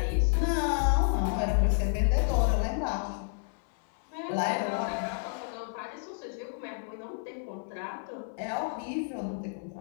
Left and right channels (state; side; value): silent; right; digital silence